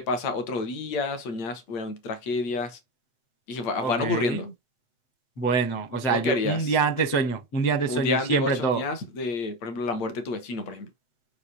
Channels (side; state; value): right; late; 8.4 ms